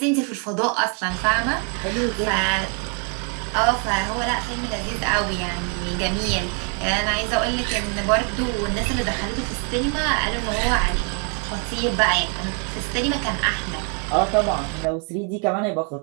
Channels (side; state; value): left; quieter; 38.1 dB